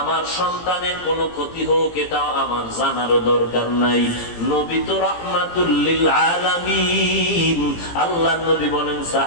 সন্তানের কোনো ক্ষতি হোক এটাও আমার জানারও দরকার নাই। নবী তো রাহমাতুল লিল আলামিন। আল্লাহর নবী বলেন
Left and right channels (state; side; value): late; right; 18 ms